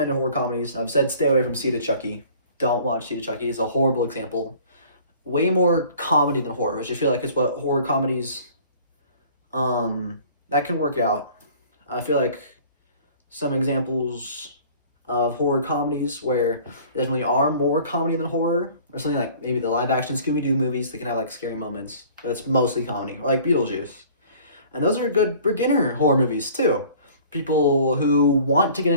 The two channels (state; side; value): inverted; both; correlation -0.50